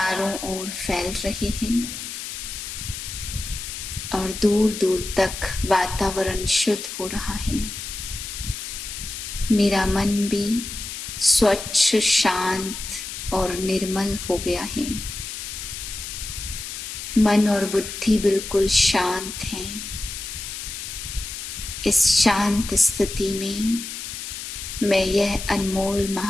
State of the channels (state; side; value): noise; left; hiss, 8 dB below the sound